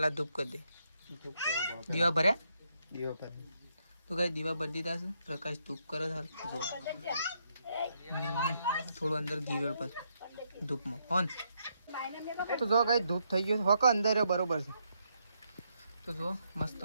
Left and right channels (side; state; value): both; inverted; correlation -0.77